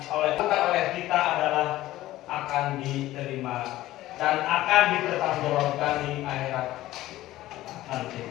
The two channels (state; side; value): quieter; right; 15.7 dB